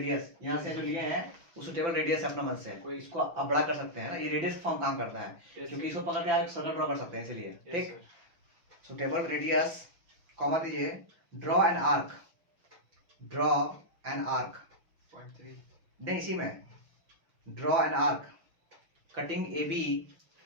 यहाँ से जो लिए हैं वो सुटेबल रेडियस अपना मन से, कोई इसको आप बड़ा कर सकते हैं ना। ये रेडियस फॉर्म काम करता है, क्योंकि इसको पकड़ के आप सर्कल ड्रॉ कर सकते हैं, इसलिए, ठीक। सुटेबल रेडियस, कॉमा दीजिए, ड्रॉ एन आर्क, नहीं इसी में, draw an arc cutting A B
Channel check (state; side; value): late; left; 6.0 ms